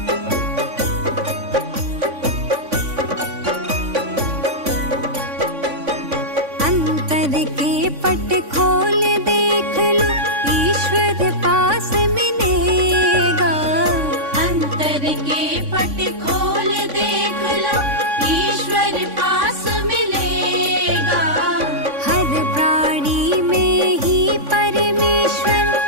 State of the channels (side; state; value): left; late; 3.5 ms